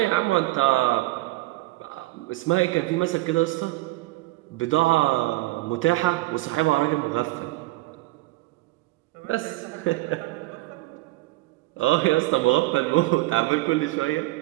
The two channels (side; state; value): left; quieter; 19.2 dB